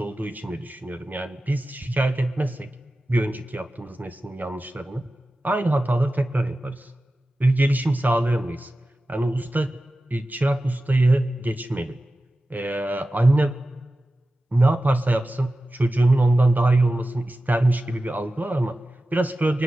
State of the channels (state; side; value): normal; both; correlation 0.94